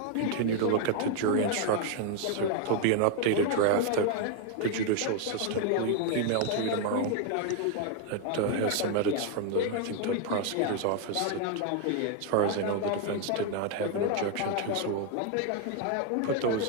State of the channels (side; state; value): both; different; correlation 0.00